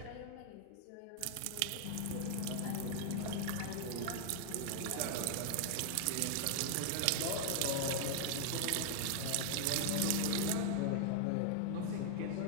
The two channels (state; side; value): different; both; correlation 0.00